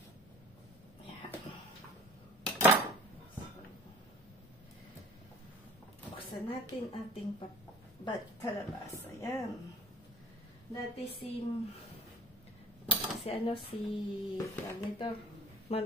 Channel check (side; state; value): both; normal; correlation 0.47